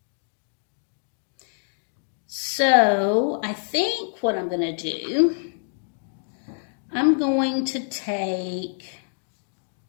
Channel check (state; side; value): silent; right; digital silence